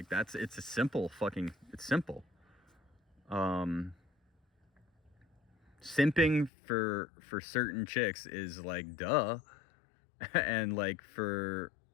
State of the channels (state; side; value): drops out; right; at 6.5 s